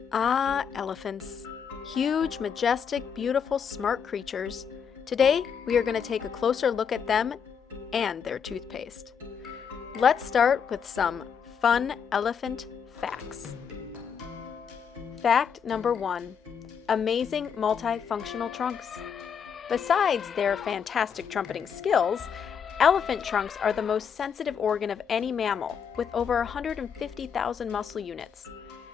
Ah, elephants. Huge, majestic, beautiful, smart creatures. Today, we are going to take a closer look at them and their toothpaste. Let's start with some fun elephant facts. Fact number 1. Amazing multifunctional trunks. Besides their fantastic trumpeting skills, elephant trunks are the most sensitive organ of any mammal, with over 150,000 muscle units.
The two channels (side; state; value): right; quieter; 7.1 dB